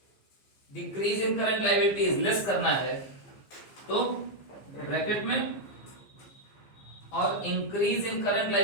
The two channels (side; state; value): right; late; 15 ms